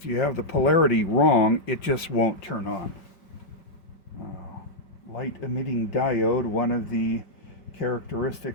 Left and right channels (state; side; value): late; right; 5.2 ms